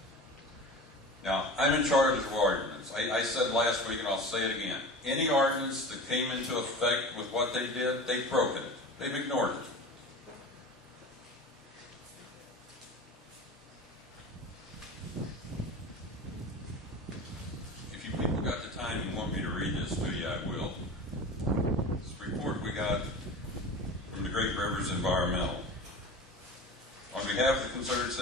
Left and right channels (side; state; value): both; normal; correlation 0.34